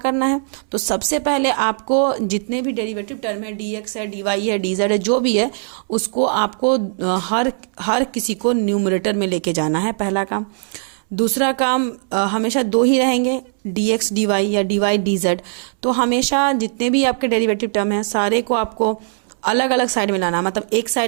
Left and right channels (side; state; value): left; silent; 66 dB below the other